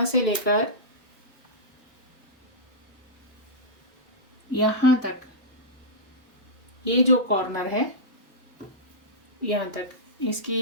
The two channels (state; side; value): normal; both; correlation -0.12